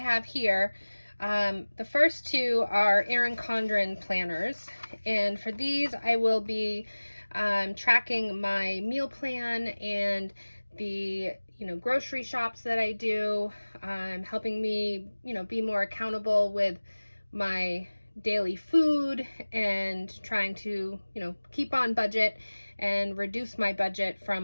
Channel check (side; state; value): both; inverted; correlation -1.00